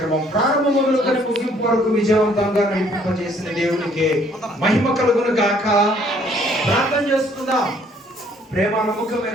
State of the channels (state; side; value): normal; both; correlation 0.62